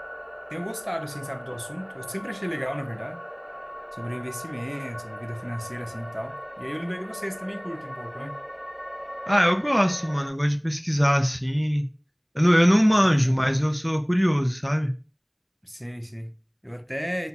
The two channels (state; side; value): identical; both; correlation 1.00